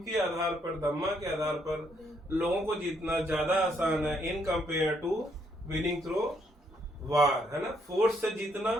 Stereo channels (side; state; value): both; normal; correlation 0.72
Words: के आधार पर, धम्मा के आधार पर लोगों को जीतना ज्यादा आसान है in compare to winning through war, है ना। फोर्स से जीतना